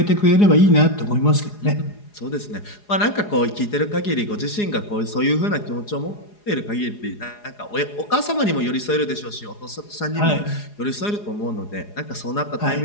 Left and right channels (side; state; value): right; late; 4.8 ms